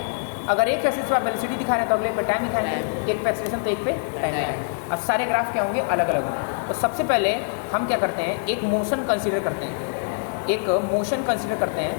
अगर एक एक्सिस पर आप वेलोसिटी दिखा रहे हैं तो अगले पे टाइम दिखाएंगे, एक पे एक्सेलरेशन तो एक पे टाइम दिखाएंगे। अब सारे ग्राफ क्या होंगे, अलग अलग होंगे। तो सबसे पहले हम क्या करते हैं, एक मोशन कंसीडर करते हैं, एक मोशन कंसीडर करते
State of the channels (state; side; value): silent; right; digital silence